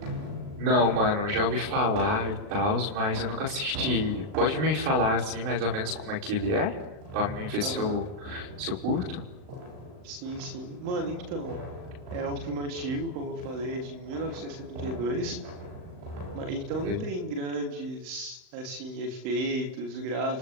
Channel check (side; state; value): left; late; 39 ms